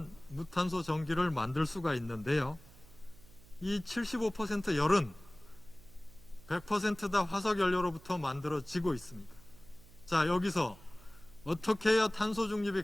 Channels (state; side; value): noise; right; hum, 23 dB below the sound